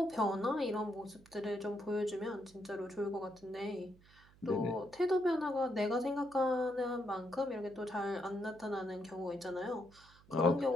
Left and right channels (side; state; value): right; noise; hum, 26 dB below the sound